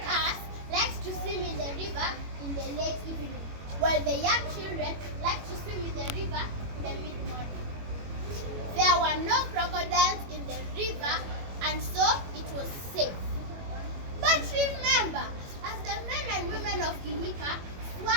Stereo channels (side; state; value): left; late; 21 ms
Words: us liked to swim in the river in the late evening, while the young children liked to swim in the river in the mid-morning. There were no crocodiles in the river, and so it was safe. But remember, as the men and women of Kihika